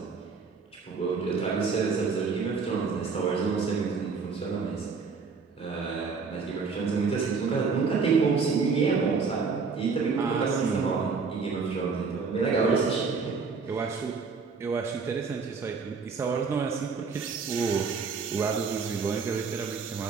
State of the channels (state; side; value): quieter; left; 5.0 dB